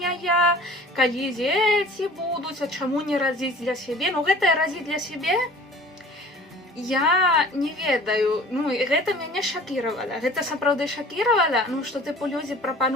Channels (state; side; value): normal; both; correlation 0.46